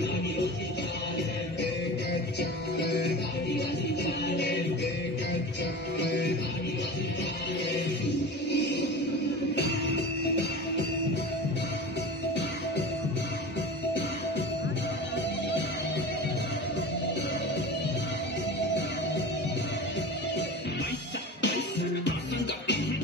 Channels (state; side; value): normal; both; correlation 0.33